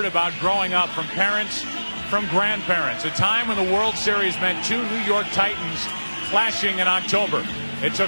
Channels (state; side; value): inverted; both; correlation -1.00